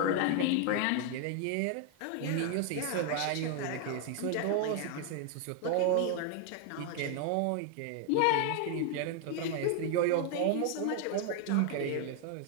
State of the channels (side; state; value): both; different; correlation 0.00